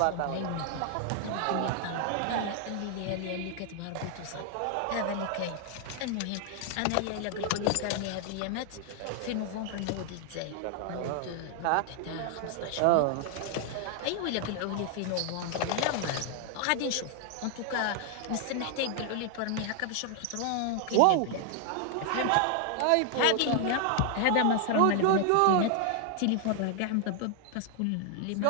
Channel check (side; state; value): both; different; correlation 0.00